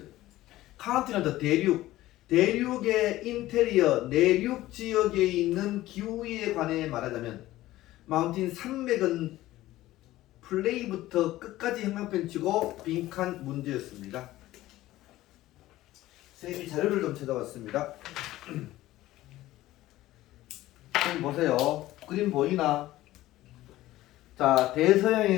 대륙의 인테리어 내륙 지역에 있는 기후에 관해 말하자면, 마운틴 산맥은 플레이부터 끝까지 형광펜 치고 빈칸 문제였습니다. 선생님이 자료를 좀 찾아봤습니다. 선생님 보세요. 그림 보이나? 자,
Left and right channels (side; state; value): right; quieter; 16.0 dB